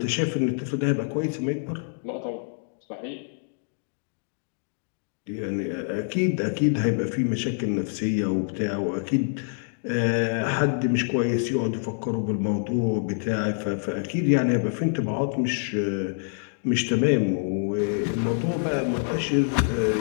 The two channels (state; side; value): silent; right; digital silence